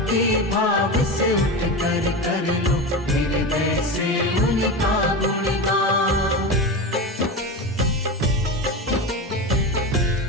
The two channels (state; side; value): normal; both; correlation 0.23